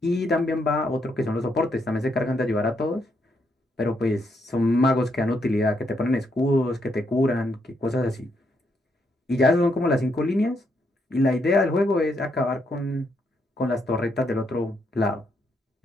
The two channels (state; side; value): normal; both; correlation 0.77